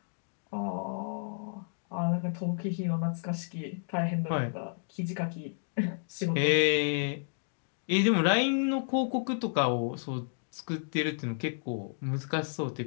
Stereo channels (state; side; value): silent; right; digital silence